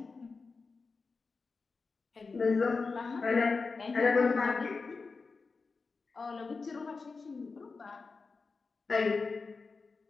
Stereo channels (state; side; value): quieter; right; 4.4 dB